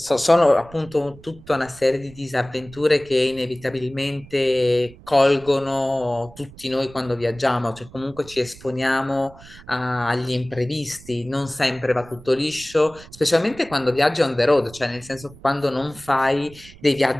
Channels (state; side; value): noise; right; rumble, 21 dB below the sound